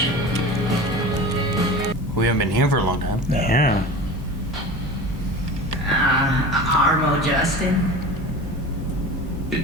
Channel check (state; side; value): normal; both; correlation 0.34